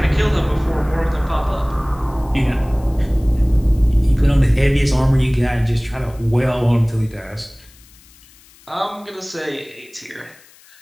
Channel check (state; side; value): noise; left; hiss, 26 dB below the sound